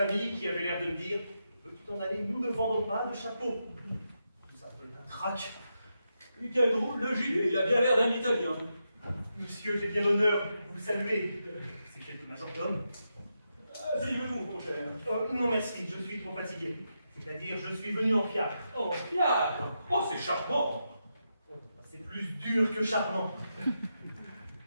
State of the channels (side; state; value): both; inverted; correlation -0.85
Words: qui avaient l'air de me dire veux-tu t'en aller, nous ne vendons pas de chapeau. Tout ça peut être un trac. Quel drôle de gilet, il a bien l'air d'un Italien. Monsieur, j'ai bien l'honneur de vous saluer. C'est quelque majordome. Asseyez-vous, mon cher. Non, merci, je suis trop fatigué. C'est-à-dire, je suis venu en fiacre. Oh, fiacre. Oh, c'est charmant. C'est plus dur que charmant.